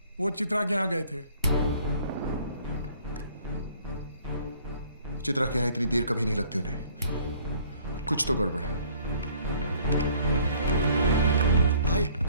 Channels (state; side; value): inverted; both; correlation -0.58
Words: वो चित्रा के यहाँ गए थे। चित्रा के यहाँ इतनी देर कभी नहीं लगती उन्हें। कुछ तो गड़बड़ है। भाई